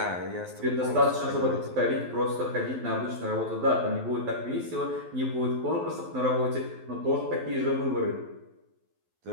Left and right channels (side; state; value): left; late; 12 ms